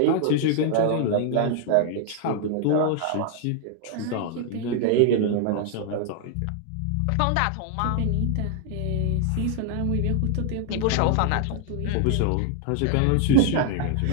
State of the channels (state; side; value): different; both; correlation 0.00